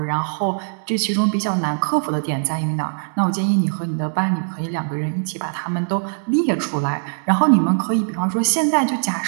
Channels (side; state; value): left; silent; digital silence